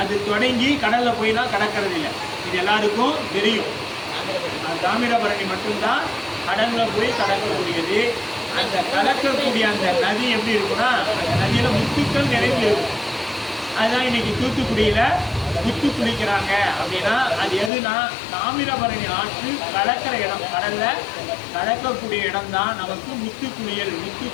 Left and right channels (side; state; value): right; drops out; at 17.7 s